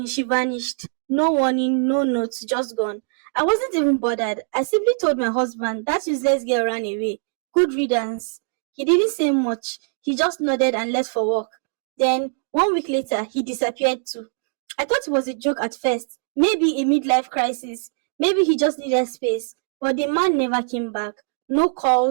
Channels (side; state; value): left; silent; digital silence